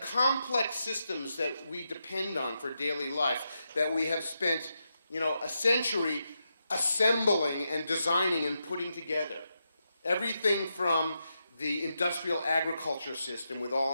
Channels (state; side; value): inverted; both; correlation -0.85